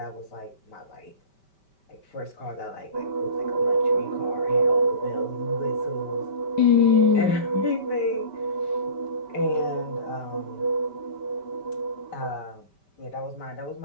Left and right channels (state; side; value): late; right; 5.1 ms